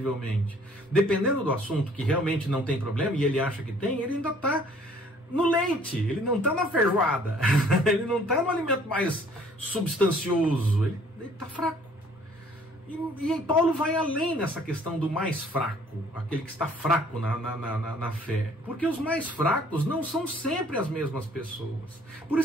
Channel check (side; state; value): both; normal; correlation 0.58